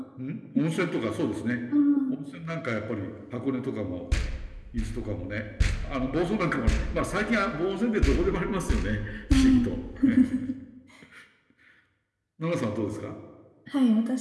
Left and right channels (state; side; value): identical; both; correlation 1.00